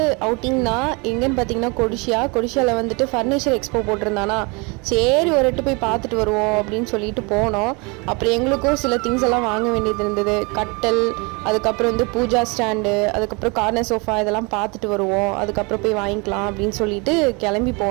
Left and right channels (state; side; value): quieter; left; 29.4 dB